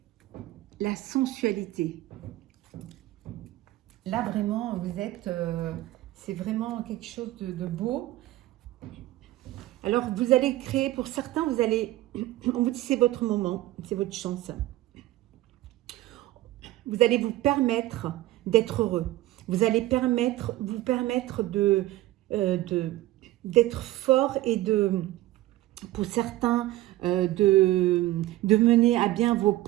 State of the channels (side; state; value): left; quieter; 16.2 dB